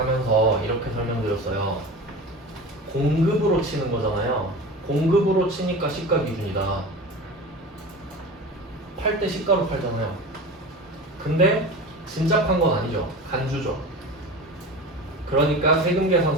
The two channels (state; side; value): normal; both; correlation 0.32